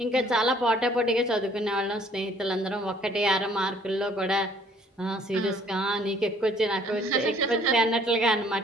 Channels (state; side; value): normal; both; correlation 0.59